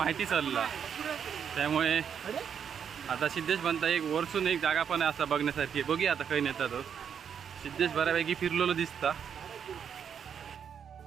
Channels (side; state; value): left; quieter; 7.8 dB